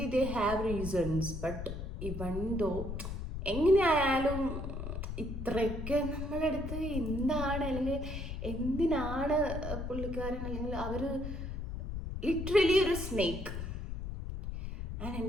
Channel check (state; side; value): noise; left; rumble, 5 dB below the sound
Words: they have reasons, but ഇവൻ ദോ എങ്ങനെയായാലും ഇത്രയൊക്കെ നമ്മളടുത്ത് എന്താണ് അല്ലെങ്കിൽ എന്തിനാണ് പുള്ളിക്കാരൻ അല്ലെങ്കിൽ അവർ ലിറ്ററലി ഒരു സ്നേക്ക്. ആൻഡ്